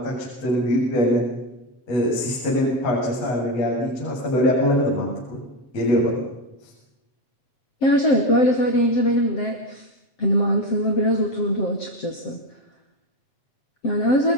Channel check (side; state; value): right; late; 7.6 ms